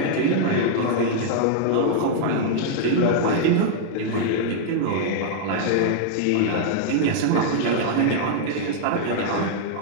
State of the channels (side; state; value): both; different; correlation -0.01